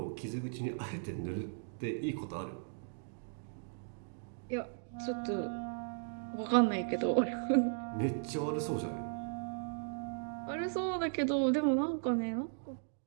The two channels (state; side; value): silent; left; digital silence